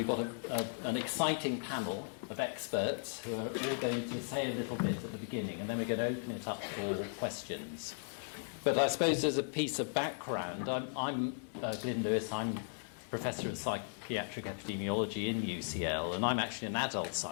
got an exciting panel of experts who are all going to say a little bit at the beginning, and then we're going to open it up for questions. But I suppose as a piece of background, I'm Glyn Lewis. I'm Professor of Psychiatric Epidemiology in UCL, and I'm actually an adult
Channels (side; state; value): right; silent; 53 dB below the other